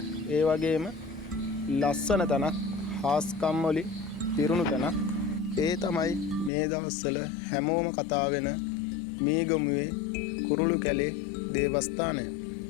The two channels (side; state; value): right; drops out; at 6.5 s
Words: ඒ වගේම ලස්සන තැනක් හාස්කම් වලින් පිරුණු තැනක් ඒ තමයි මේ දවස්වල හැමෝම කතා වෙන මීගමුවේ කුරුළු කැලේ දේවස්ථානය.